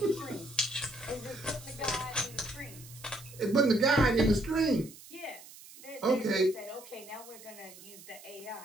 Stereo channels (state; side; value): noise; right; hiss, 18 dB below the sound